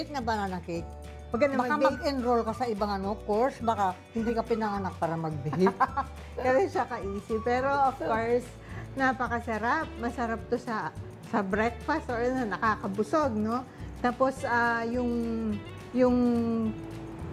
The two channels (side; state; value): both; identical; correlation 1.00